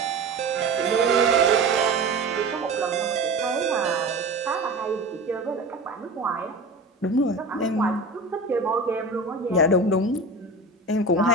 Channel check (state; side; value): quieter; left; 3.1 dB